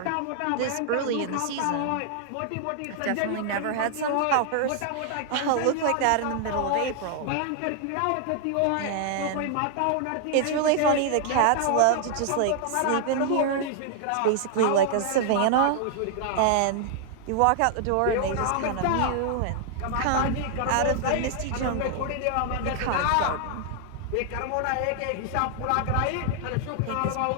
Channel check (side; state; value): both; different; correlation 0.00